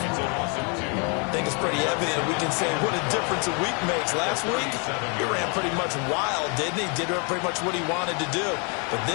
think it's pretty evident we can say what a difference a week makes. Last week, he ran pretty much wild, didn't he? Did pretty much what he wanted to do. But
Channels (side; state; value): right; quieter; 35.2 dB